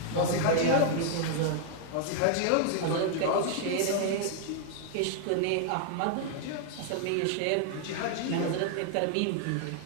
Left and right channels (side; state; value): both; different; correlation 0.00